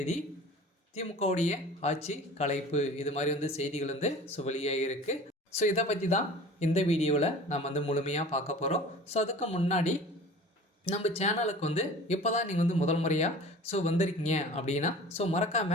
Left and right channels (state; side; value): normal; both; correlation 0.41